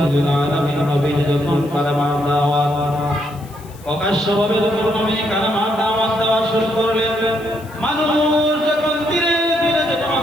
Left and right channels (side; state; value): left; noise; hiss, 24 dB below the sound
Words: লিল আলামিন নবী যখন কালেমার দাওয়াত প্রকাশ্যভাবে নবী কালেমার দাওয়াত দেওয়া শুরু করলেন, মানুষ যখন ধীরে ধীরে যখন